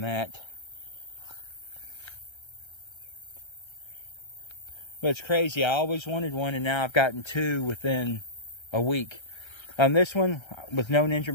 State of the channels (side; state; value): right; late; 1.3 ms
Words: that. But it's crazy. I always wanted one, and now I've gotten two within a week. This one, with no